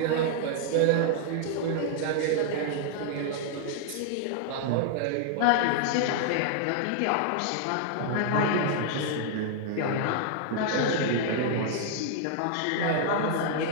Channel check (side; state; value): both; different; correlation 0.00